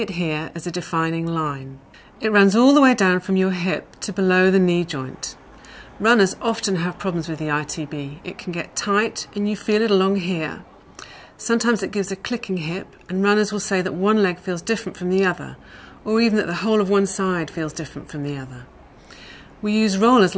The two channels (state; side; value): identical; both; correlation 1.00